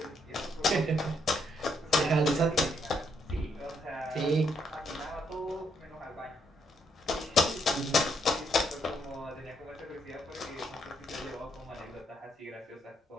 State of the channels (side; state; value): both; normal; correlation 0.74